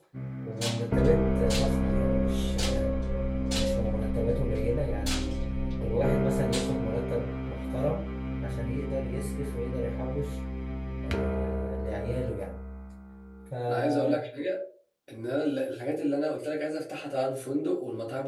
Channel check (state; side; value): identical; both; correlation 1.00